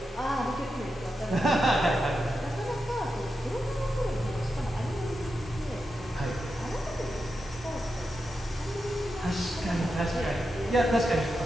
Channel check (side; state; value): both; normal; correlation 0.88